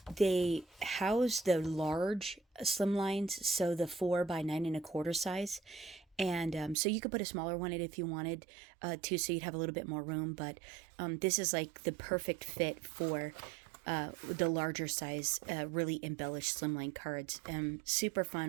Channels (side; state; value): left; drops out; at 6.8 s